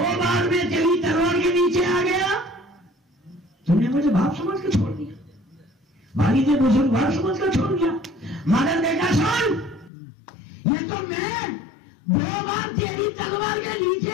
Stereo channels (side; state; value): right; drops out; at 9.9 s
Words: बार मैं तेरी तलवार के नीचे आ गया, तुमने मुझे बाप समझ के छोड़ दिया, वालिद बुजुर्ग बाप समझ कर छोड़ दिया, मगर बेटा सुन, ये तो मैं 2 बार तेरी तलवार के नीचे